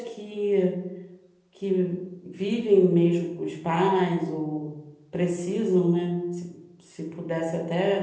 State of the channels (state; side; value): identical; both; correlation 1.00